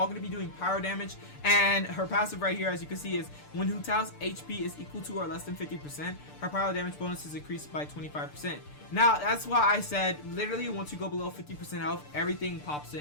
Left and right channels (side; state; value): right; late; 6.8 ms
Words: going to be doing pyro damage. And her passive right here, as you can see, is when Hu Tao's HP is equal to or less than 50%, her pyro damage bonus is increased by 25%. Now, that's why I said, literally, once you go below 50% health, everything pops